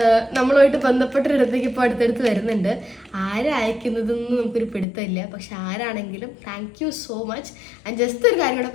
നമ്മളുമായിട്ട് ബന്ധപ്പെട്ടൊരിടത്തേക്ക് ഇപ്പോൾ അടുത്തടുത്ത് വരുന്നുണ്ട്. ആരയക്കുന്നതെന്ന് നമുക്കൊരു പിടുത്തമില്ല, പക്ഷെ ആരാണെങ്കിലും താങ്ക് യു സോ മച്ച്. ഞാൻ ജസ്റ്റ് ഒരു കാര്യം കൂടെ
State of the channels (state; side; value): drops out; right; at 4.9 s